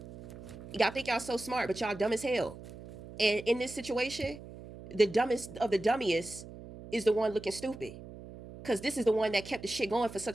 Y'all think y'all so smart, but y'all dumb as hell. And in this situation, the dumbest of the dummiest is the one looking stupid, because this is the one that kept the shit going for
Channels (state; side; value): noise; right; hum, 15 dB below the sound